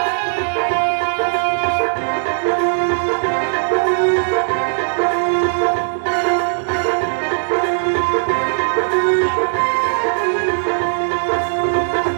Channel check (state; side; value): silent; left; digital silence